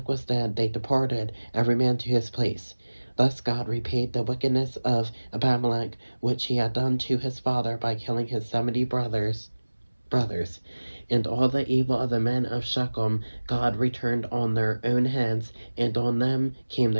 was dead, they departed, every man to his place. Thus God repaid the wickedness of Abimelech, which he had done to his father by killing his 70 brothers. And all the evil of the men of Shechem God returned on their own heads, and on them came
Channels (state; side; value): inverted; both; correlation -1.00